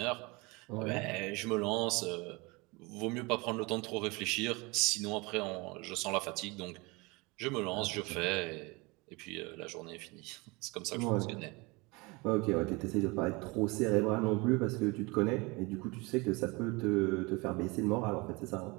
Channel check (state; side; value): quieter; left; 25.8 dB